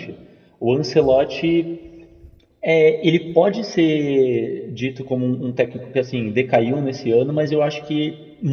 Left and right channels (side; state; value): both; identical; correlation 1.00